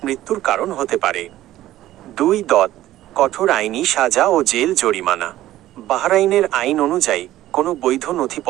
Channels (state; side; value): quieter; left; 14.4 dB